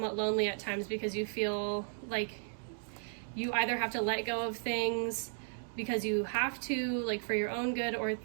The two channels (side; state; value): left; silent; digital silence